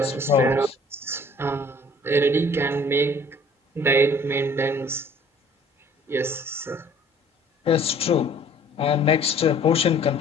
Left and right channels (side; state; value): both; normal; correlation 0.54